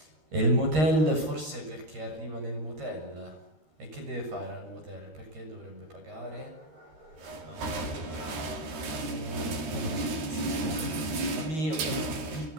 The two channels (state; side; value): late; left; 13 ms